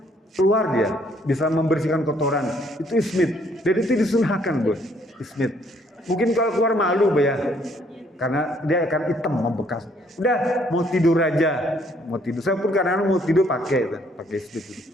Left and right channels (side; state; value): both; normal; correlation 0.66